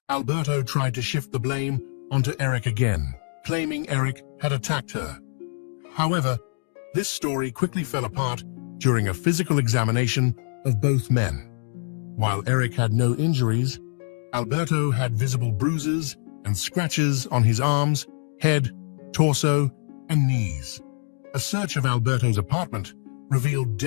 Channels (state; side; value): silent; right; digital silence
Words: Alberto tried to shift the blame onto Eric again, claiming Eric had attacked her. However, this story quickly fell apart during a physical examination of both men. While Eric had no injuries, Alberto had visible bruises and scratches on his arms, head, torso, and knees. A search of Alberto's apartment revealed